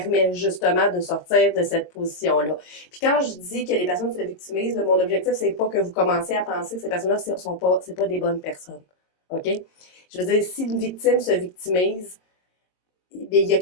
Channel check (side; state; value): right; late; 22 ms